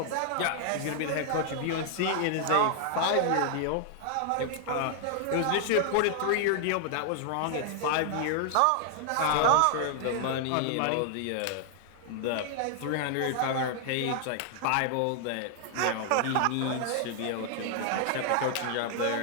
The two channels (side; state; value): both; different; correlation 0.00